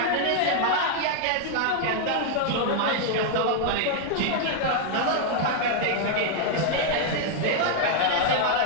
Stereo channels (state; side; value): different; both; correlation 0.00